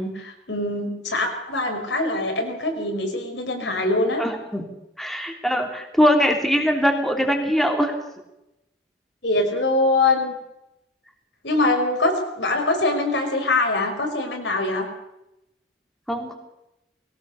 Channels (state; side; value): normal; both; correlation 0.30